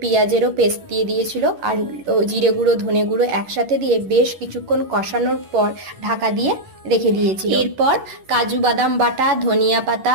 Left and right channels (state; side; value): late; left; 11 ms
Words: পেঁয়াজেরও পেস্ট দিয়ে দিয়েছিল, আর জিরে গুঁড়ো, ধনে গুঁড়ো একসাথে দিয়ে বেশ কিছুক্ষণ কষানোর পর ঢাকা দিয়ে রেখে দিয়েছিল। এরপর কাজু বাদাম বাটা, ধনিয়া